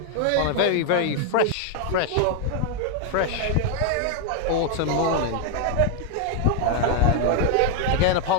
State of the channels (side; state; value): both; different; correlation 0.00